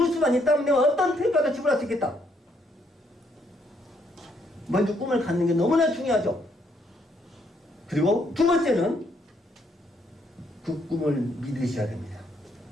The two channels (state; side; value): normal; both; correlation 0.72